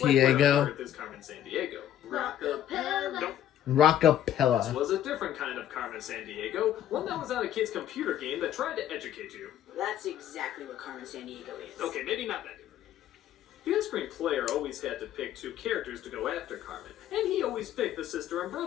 Sandiego? earth is Carmen Sandiego? Rockapella. Nope. This Rockapella. was a different kind of Carmen Sandiego, one that was on a kid's computer game that tried to educate you. That's exactly what Carmen Sandiego is. Okay, maybe not that different. The on-screen player always had to pick 2 characters to go after Carmen, and he always picked the sister and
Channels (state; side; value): quieter; right; 11.3 dB